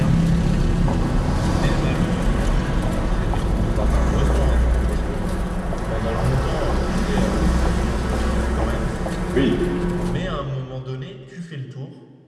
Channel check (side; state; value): both; identical; correlation 1.00